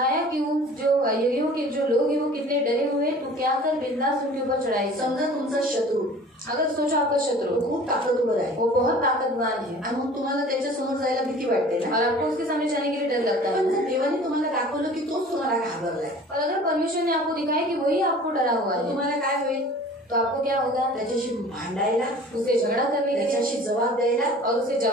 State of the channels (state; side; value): normal; both; correlation 0.45